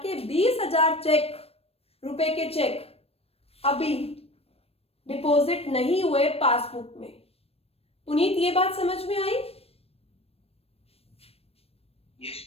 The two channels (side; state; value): right; late; 0.28 ms